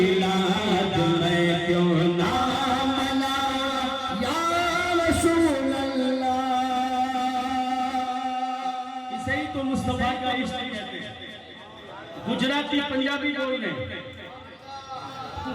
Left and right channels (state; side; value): identical; both; correlation 1.00